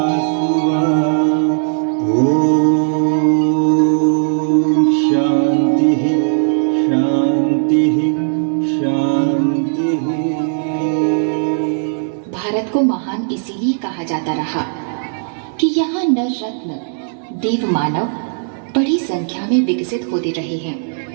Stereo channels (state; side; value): silent; left; digital silence